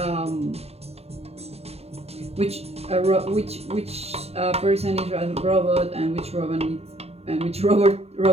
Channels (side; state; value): left; late; 0.30 ms